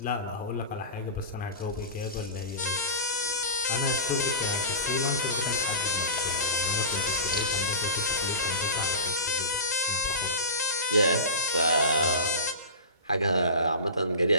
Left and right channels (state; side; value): inverted; both; correlation -0.30